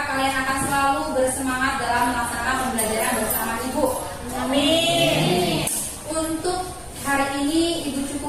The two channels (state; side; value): identical; both; correlation 1.00